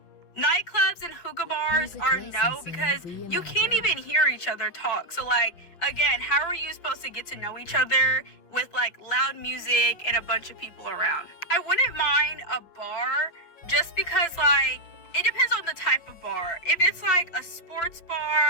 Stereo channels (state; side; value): late; right; 5.8 ms